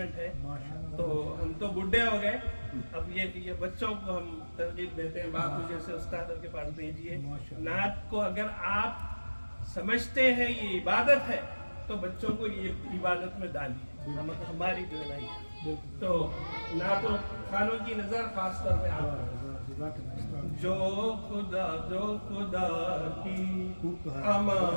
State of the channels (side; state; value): both; inverted; correlation -1.00